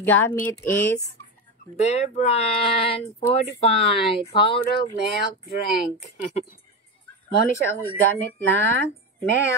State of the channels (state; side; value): normal; both; correlation 0.17